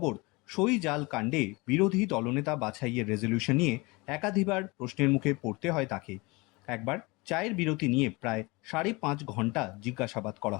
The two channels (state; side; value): quieter; right; 25.1 dB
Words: সই জাল কাণ্ডে বিরোধী দলনেতা বাছাইয়ের রেজলিউশন নিয়ে একাধিকবার প্রশ্নের মুখে পড়তে হয় তাকে। একবার চায়ের বিরতি নিয়ে প্রায় 5.5 ঘন্টা জিজ্ঞাসাবাদ করা